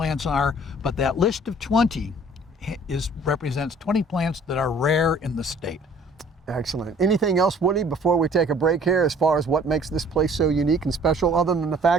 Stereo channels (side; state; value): both; normal; correlation 0.53